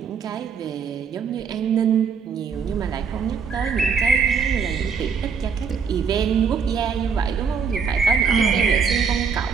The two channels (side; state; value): left; quieter; 5.9 dB